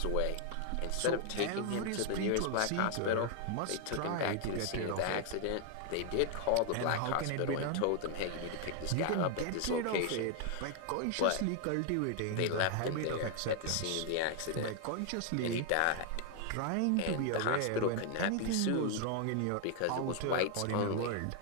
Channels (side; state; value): both; different; correlation 0.00